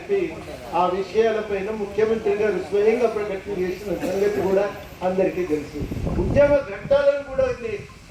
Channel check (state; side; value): identical; both; correlation 1.00